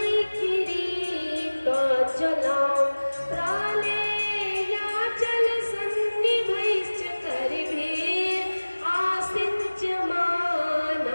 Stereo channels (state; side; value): inverted; both; correlation -1.00